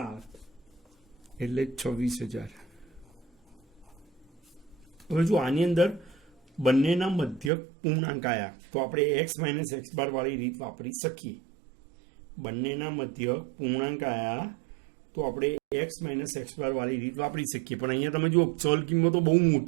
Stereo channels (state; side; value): drops out; left; at 7.5 s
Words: એટલે 26,000. હવે જો આની અંદર બંનેના મધ્યક પૂર્ણાંક આવ્યા તો આપણે એક્સ માઇનસ એક્સ બાર વાળી રીત વાપરી શકીએ. બંનેના મધ્યક પૂર્ણાંક આવ્યા તો આપણે એક્સ માઇનસ એક્સ બાર વાળી રીત વાપરી શકીએ. પણ અહીંયા તમે જુઓ ચલ કિંમતો બહુ